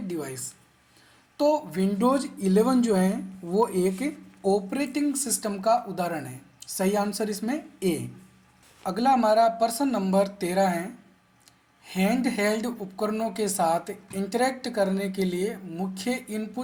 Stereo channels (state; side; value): identical; both; correlation 1.00